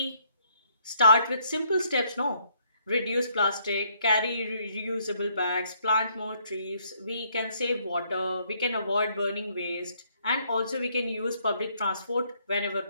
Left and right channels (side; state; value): both; inverted; correlation -0.69